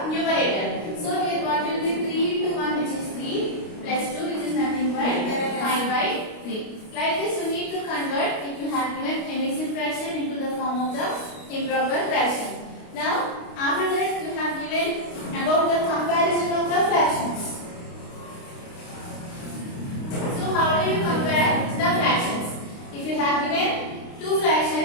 numerator. So here improper fraction. Now, after that you have given about the comparison of the fractions. So, how do you compare the fractions? If you have given two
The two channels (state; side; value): late; right; 29 ms